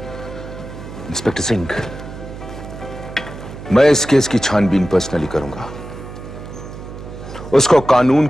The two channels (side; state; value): right; noise; hum, 12 dB below the sound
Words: इंस्पेक्टर सिंह, मैं इस केस की छानबीन पर्सनली करूंगा। उसको कानून